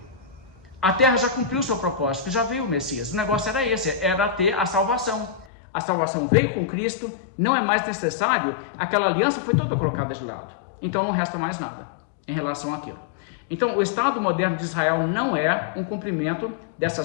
A terra já cumpriu o seu propósito, já veio o Messias. O negócio era esse, era ter a salvação. A salvação veio com Cristo, não é mais necessário, aquela aliança foi toda colocada de lado. Então não resta mais nada em relação àquilo. Então o Estado moderno de Israel não é um cumprimento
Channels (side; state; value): right; drops out; at 5.5 s